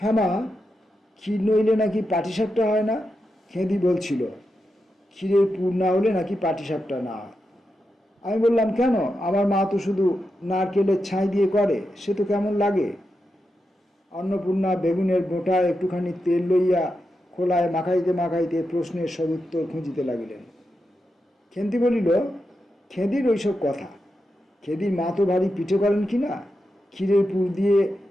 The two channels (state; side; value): normal; both; correlation 0.87